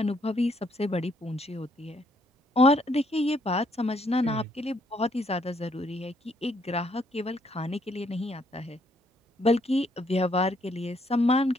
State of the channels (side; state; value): both; normal; correlation 0.70